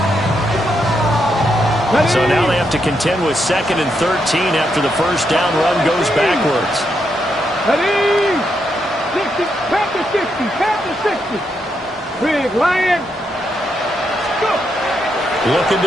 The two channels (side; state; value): both; normal; correlation 0.80